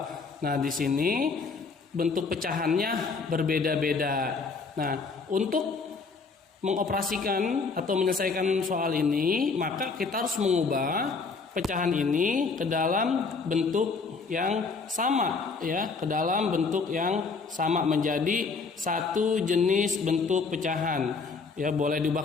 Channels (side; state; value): right; quieter; 4.6 dB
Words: Nah, di sini bentuk pecahannya berbeda-beda. Nah, untuk mengoperasikan atau menyelesaikan soal ini, maka kita harus mengubah pecahan ini ke dalam bentuk yang sama, ya, ke dalam bentuk yang sama menjadi satu jenis bentuk pecahan. Ya, boleh